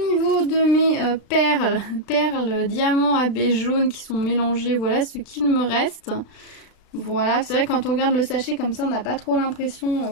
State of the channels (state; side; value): late; right; 36 ms